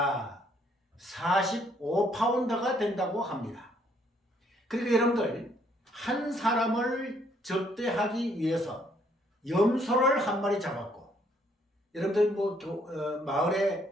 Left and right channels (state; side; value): normal; both; correlation 0.67